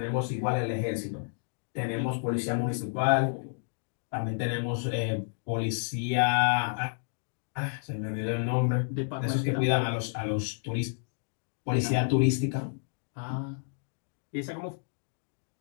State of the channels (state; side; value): silent; right; digital silence